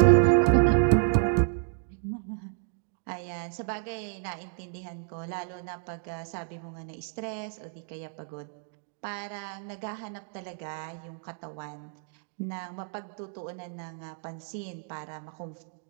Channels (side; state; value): left; silent; 58 dB below the other